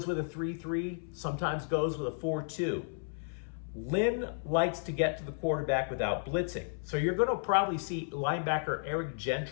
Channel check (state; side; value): silent; right; 56 dB below the other